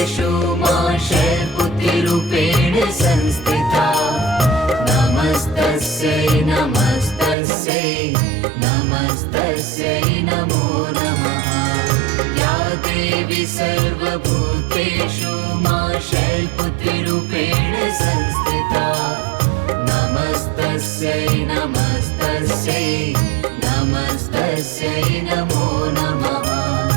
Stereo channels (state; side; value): drops out; left; at 7.4 s